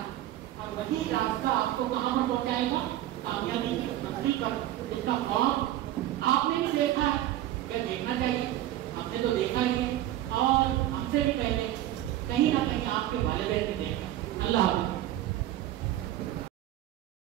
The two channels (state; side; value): quieter; left; 13.8 dB